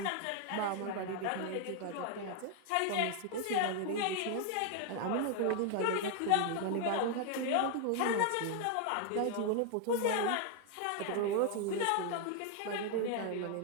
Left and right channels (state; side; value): different; both; correlation 0.00